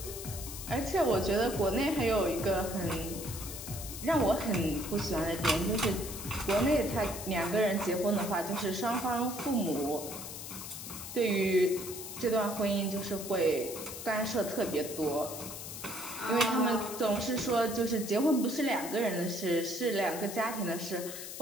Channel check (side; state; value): left; noise; hiss, 9 dB below the sound